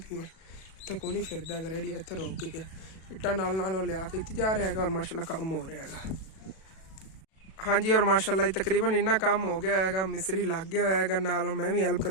पीवन इतना कोई नहीं फिरदा रेडी इतना रोक के गया इट्टा नाल लिया के इतने जा रहा है और माशाअल्लाह काम हो रहा है। हाँ जी और माशाअल्लाह तकरीबन इन्ना काम हो गया है मिस्त्री लग गया है नाल मैं भी हेल्प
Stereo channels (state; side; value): late; right; 37 ms